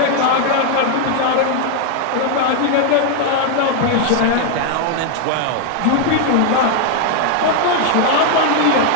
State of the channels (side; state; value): both; different; correlation 0.00